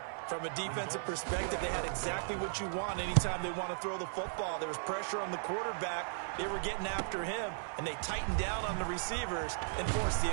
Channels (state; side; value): silent; left; 54 dB below the other